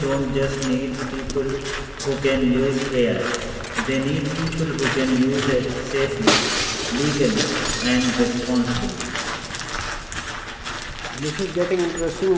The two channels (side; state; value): both; identical; correlation 1.00